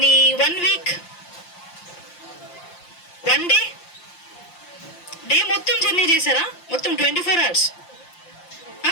1 week, 1 day మొత్తం జర్నీ చేశారా? మొత్తం 24 hours.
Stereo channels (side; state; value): right; late; 5.7 ms